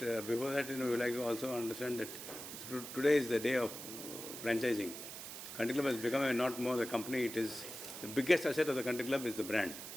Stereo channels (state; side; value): noise; right; hiss, 10 dB below the sound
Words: before that, we like to also understand that today is the day of franchising. Country Club has become not more a company. It is the biggest asset of the Country Club is the brand.